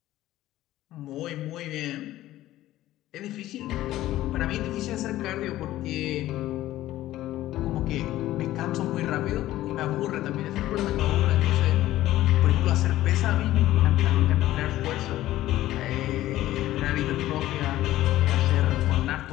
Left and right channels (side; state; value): right; quieter; 14.9 dB